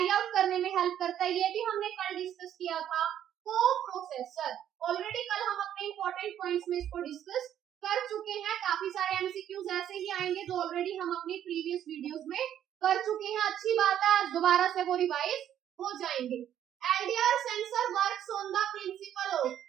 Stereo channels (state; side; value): quieter; left; 10.5 dB